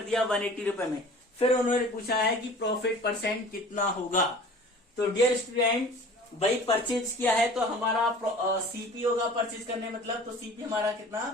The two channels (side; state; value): both; normal; correlation 0.44